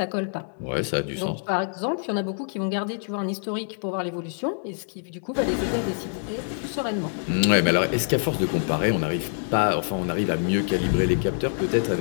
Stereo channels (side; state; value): right; silent; digital silence